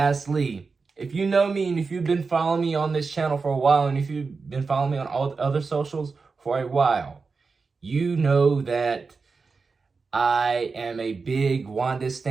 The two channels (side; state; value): left; quieter; 4.6 dB